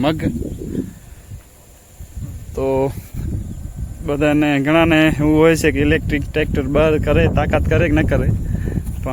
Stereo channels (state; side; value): identical; both; correlation 1.00